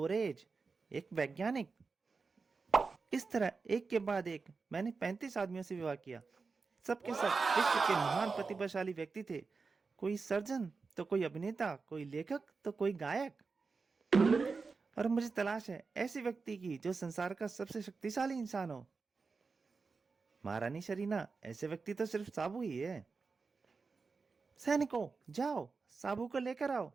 एक वैज्ञानिक। इस तरह एक के बाद एक मैंने 35 आदमियों से विवाह किया। सबके सब विश्व के महान प्रतिभाशाली व्यक्ति थे। कोई सर्जन तो कोई अभिनेता, कोई लेखक तो कोई गायक। और मुझे तलाश है ऐसे व्यक्ति की जो संसार का सबसे शक्तिशाली इंसान हो। महारानी शरीना, ऐसे व्यक्ति तो सिर्फ साबू ही है। सैनिकों, जाओ साबू को लेकर आओ।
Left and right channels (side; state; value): left; quieter; 4.5 dB